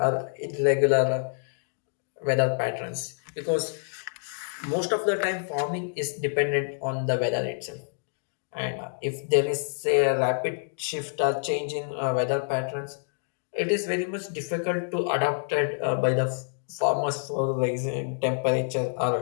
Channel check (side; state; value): right; silent; digital silence